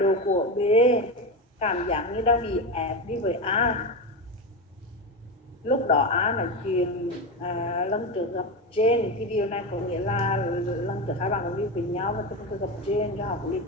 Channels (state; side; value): normal; both; correlation 0.17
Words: của B cảm giác như đang bị ép đi với A. Lúc đó A nói chuyện lần trước gặp Jane, thì điều này có nghĩa là lần trước hai bạn cũng đi với nhau và từng gặp Jane cho họ cũng đi